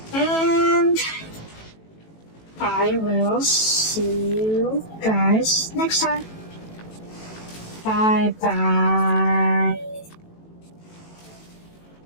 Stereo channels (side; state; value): right; late; 18 ms